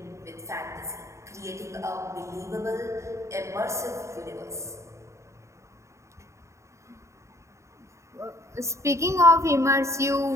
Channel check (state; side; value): late; left; 0.14 ms